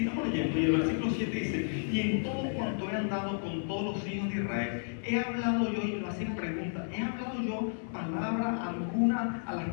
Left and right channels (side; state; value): right; silent; digital silence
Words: leyendo. Y el versículo 7 dice: y en todo cuanto he andado con todos los hijos de Israel, he hablado yo, y lo hacen preguntas, he hablado yo palabra alguna a